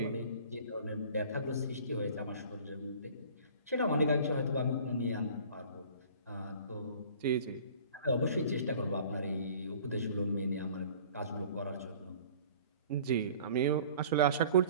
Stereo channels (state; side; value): inverted; both; correlation -0.47